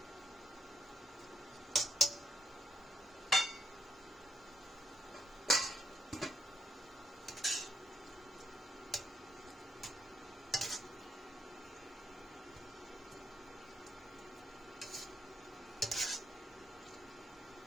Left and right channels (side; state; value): both; normal; correlation 0.78